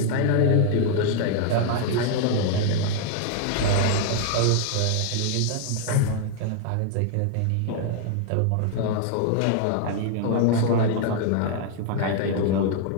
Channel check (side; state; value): both; different; correlation 0.00